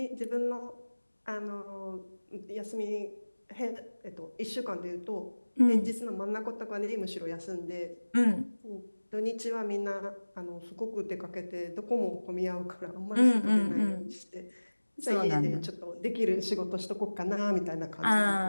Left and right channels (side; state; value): both; inverted; correlation -1.00